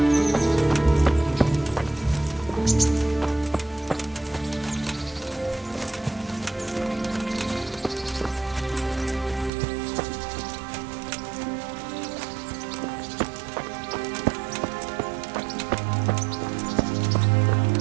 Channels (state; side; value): drops out; left; at 9.5 s